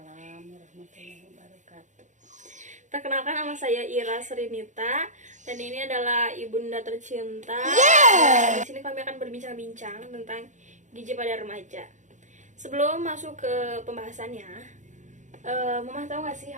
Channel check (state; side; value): late; left; 0.35 ms